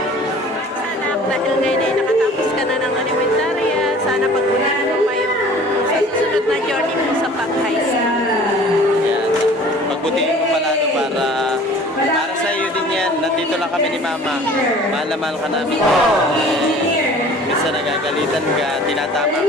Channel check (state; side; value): normal; both; correlation 0.47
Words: Sana dahil ngayon ay nakatapos ka na ng elementarya, sana pagpunin mo pa yung susunod na journey mo sa pag-high school. Yan. Pagbutihin mo pala para sa iyo din yan. Nandito lang kami ni Mama. Mahal na mahal ka namin. Minsan nagagalitan ka, tinatama